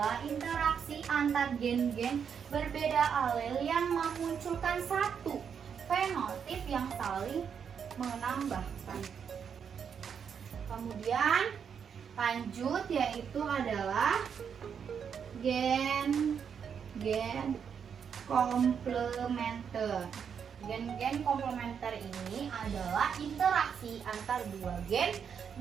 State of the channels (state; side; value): quieter; left; 7.2 dB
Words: interaksi antar gen-gen berbeda alel yang memunculkan satu fenotip yang saling menambahkan. Kemudian lanjut yaitu adalah gen komplementer. Gen komplementer ini adalah interaksi antar dua gen